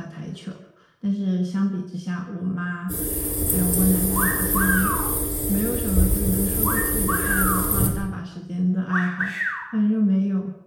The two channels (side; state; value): both; identical; correlation 1.00